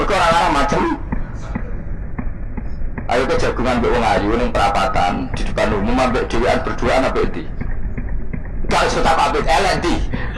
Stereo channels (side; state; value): both; identical; correlation 1.00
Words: ora macam ayo ke jagungan mbek wong ayu ning perapatan di depan umum ambek dhewean berduaan apa iki? Kalau sudah pabrik elek di,